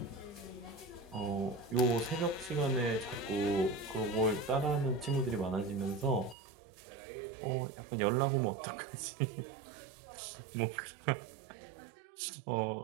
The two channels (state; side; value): drops out; left; at 6.4 s